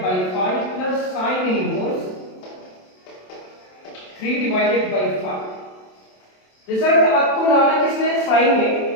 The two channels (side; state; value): right; late; 27 ms